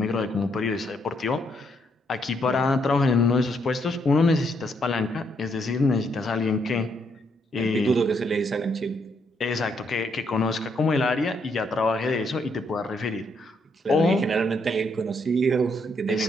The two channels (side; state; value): both; normal; correlation 0.74